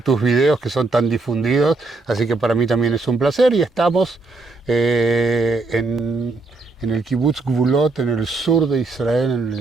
videos que son tan difundidos, así que para mí también es un placer y estamos en el Kibbutz Gvulot, en el sur de Israel, en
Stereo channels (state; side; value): quieter; left; 3.5 dB